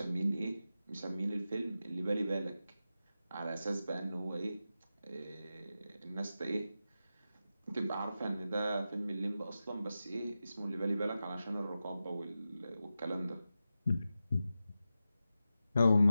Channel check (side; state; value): both; inverted; correlation -0.92